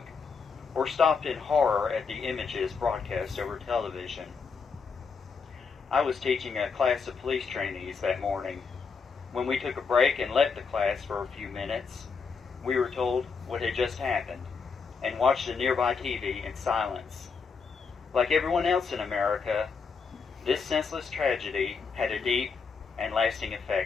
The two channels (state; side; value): quieter; right; 5.3 dB